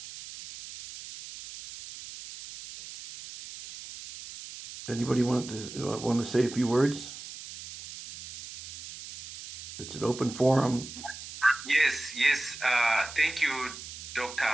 Anybody want to say a few words? It's an open forum. Yes. Thank you, Dr.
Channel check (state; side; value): noise; right; hiss, 12 dB below the sound